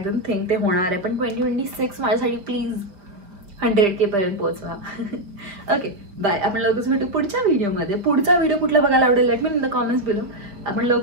थिंक ते होणार आहे. पण 2026 माझ्यासाठी प्लीज 100K पर्यंत पोहोचवा. Okay bye. आपण लवकरच भेटू पुढच्या व्हिडिओमध्ये. पुढचा व्हिडिओ कुठला बघायला आवडेल let me in the comments below. आपण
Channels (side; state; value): left; late; 5.3 ms